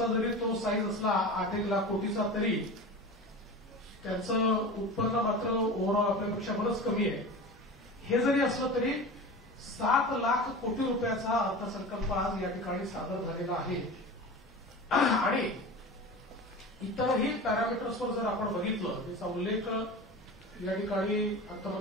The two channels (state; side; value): normal; both; correlation 0.32